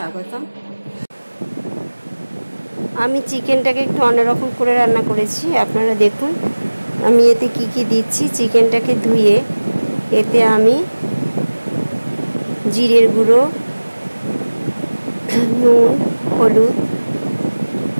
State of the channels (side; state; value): both; inverted; correlation -1.00